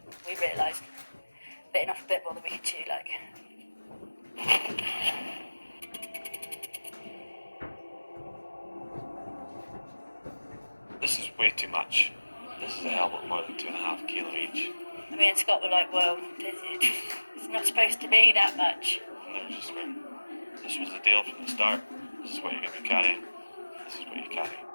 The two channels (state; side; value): inverted; both; correlation -1.00